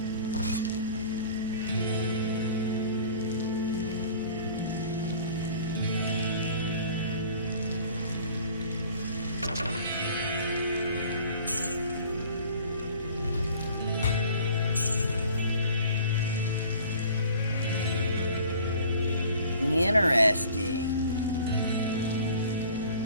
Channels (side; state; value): both; inverted; correlation -0.48